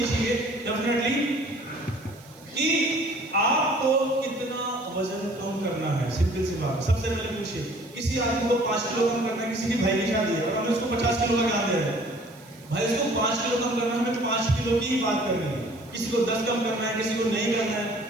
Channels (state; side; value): noise; right; hiss, 25 dB below the sound